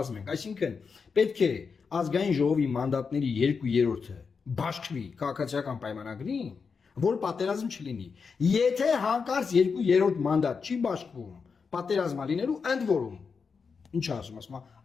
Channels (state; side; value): quieter; right; 5.4 dB